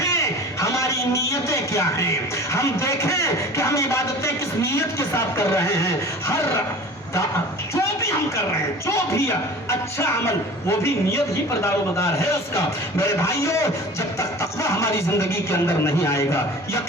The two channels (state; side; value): normal; both; correlation 0.41